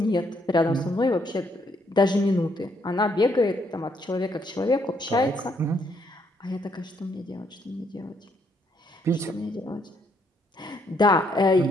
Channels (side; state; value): both; normal; correlation 0.72